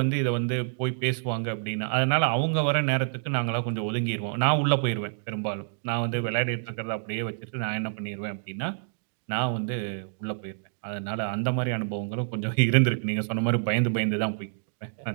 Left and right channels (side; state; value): left; silent; digital silence